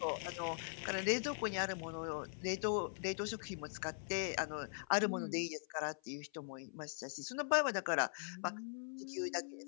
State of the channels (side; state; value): right; silent; 50 dB below the other